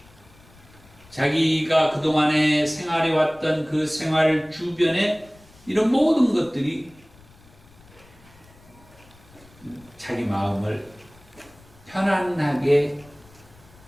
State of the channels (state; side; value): noise; left; rumble, 26 dB below the sound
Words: 자기가 그동안에 생활해왔던 그 생활 주변에 이런 모든 것들이 자기 마음을 편안하게